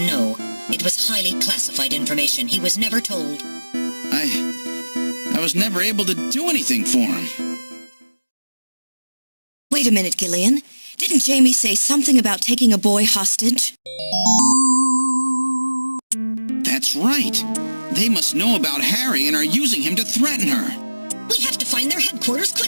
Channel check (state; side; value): inverted; both; correlation -1.00